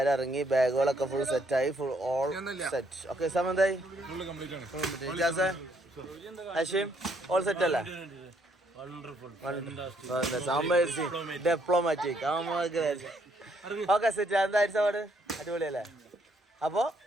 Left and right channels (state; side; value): normal; both; correlation 0.70